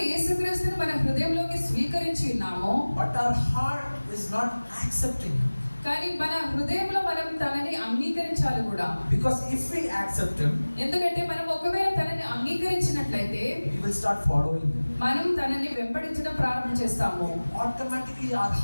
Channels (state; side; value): inverted; both; correlation -1.00